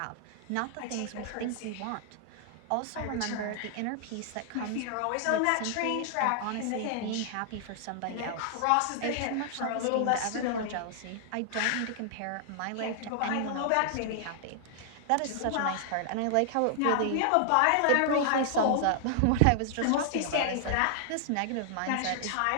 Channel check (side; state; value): both; different; correlation -0.01